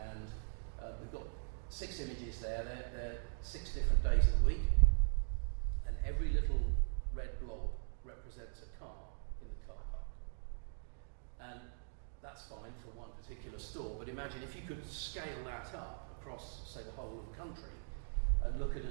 we've got 6 images there. They're 6 different days of the week, and every little red blob represents a car in the car park. And that's fine for one particular store, but imagine if you could scale that up across, say, the whole of the country and look at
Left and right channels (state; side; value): silent; left; digital silence